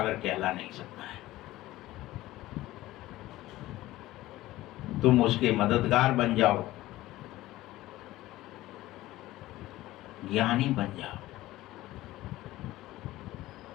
कहला नहीं सकता है। तुम उसके मददगार बन जाओ, ज्ञानी बन जाओ,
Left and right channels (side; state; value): right; quieter; 16.7 dB